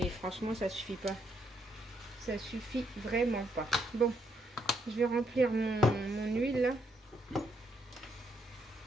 franchement, ça suffit pas. Ça suffit vraiment pas. Bon, je vais remplir mon huile là.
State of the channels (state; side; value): normal; both; correlation 0.75